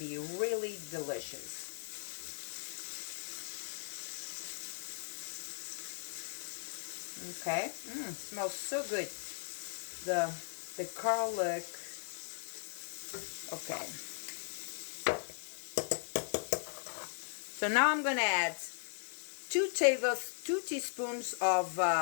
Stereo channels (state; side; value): silent; right; 52 dB below the other